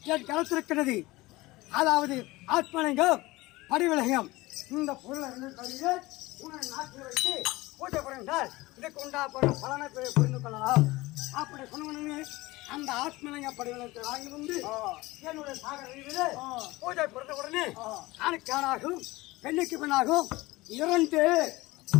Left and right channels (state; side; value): quieter; right; 20.3 dB